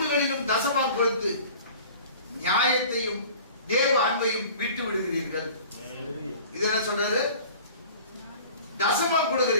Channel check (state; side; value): inverted; both; correlation -0.44